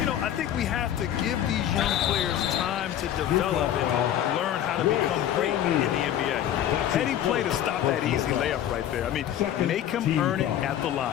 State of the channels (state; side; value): quieter; right; 11.1 dB